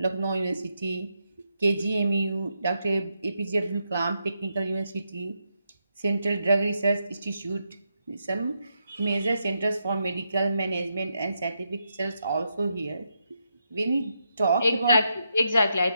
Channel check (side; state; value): both; inverted; correlation -0.83